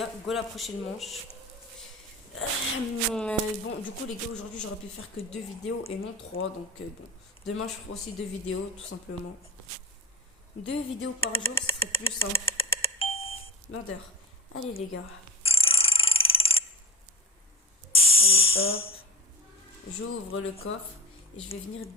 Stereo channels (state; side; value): normal; both; correlation 0.29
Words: go la prochaine manche. Bon, du coup, les gars, aujourd'hui, j'aurais pu faire que 2 vidéos et non 3. Donc, bon. Demain, je ferai aussi 2 vidéos, tout simplement. 2 vidéos par jour, ce serait plus simple. Murder. Allez, les gars. Allez, hop. J'ouvre le coffre et je vais venir